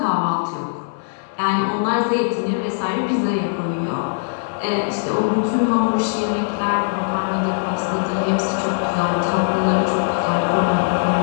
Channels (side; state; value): right; silent; digital silence